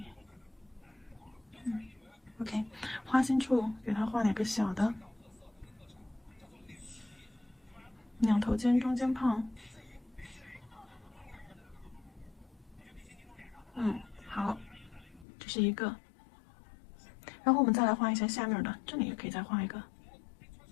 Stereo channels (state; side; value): drops out; right; at 15.2 s